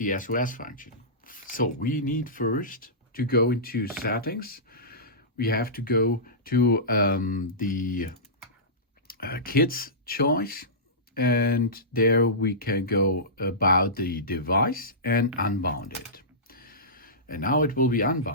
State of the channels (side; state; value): both; normal; correlation -0.19